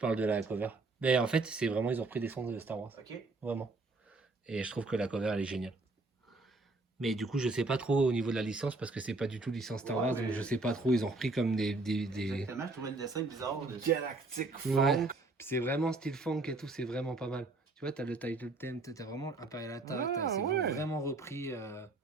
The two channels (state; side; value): quieter; left; 3.3 dB